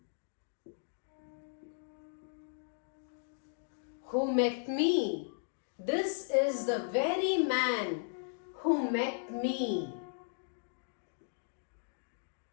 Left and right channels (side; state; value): right; silent; digital silence